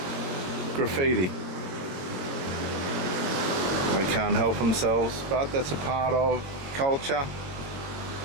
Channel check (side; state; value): left; late; 22 ms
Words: graffiti. They can't help themselves, but that's a part of culture.